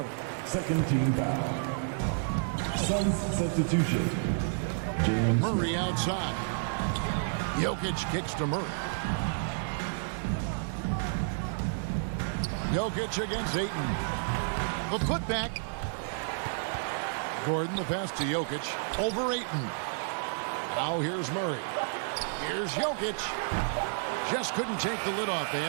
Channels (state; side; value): silent; left; digital silence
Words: Second team foul. Suns substitution. James Murray outside. Jokic kicks to Murray. Jokic against Ayton. The putback. Gordon, the pass to Jokic. Over Ayton. Now here's Murray. Here's Jokic. Just couldn't take the lid off. They